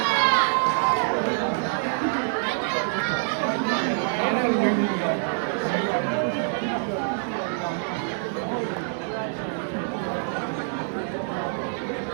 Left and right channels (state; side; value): silent; left; digital silence